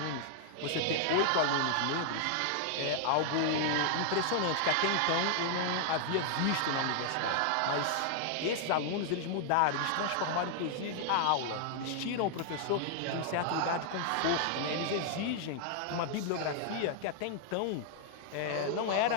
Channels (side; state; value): both; different; correlation 0.00